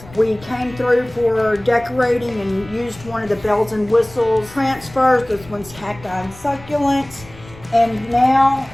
We came through for decorating and used one of the bells and whistles transfers. This one's Cacti and Succulents, and now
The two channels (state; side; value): noise; left; rumble, 20 dB below the sound